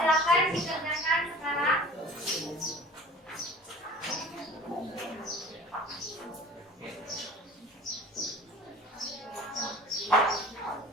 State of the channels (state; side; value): normal; both; correlation 0.43